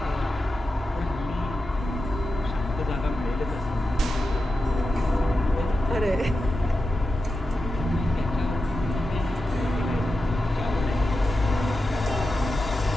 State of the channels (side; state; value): both; normal; correlation 0.91